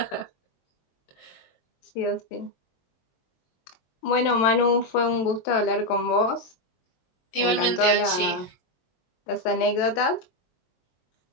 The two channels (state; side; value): late; right; 22 ms